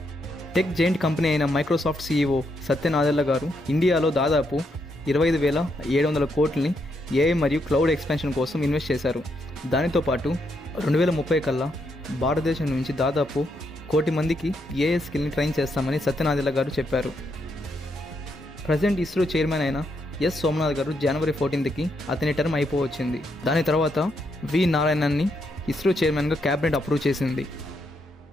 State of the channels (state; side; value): normal; both; correlation 0.78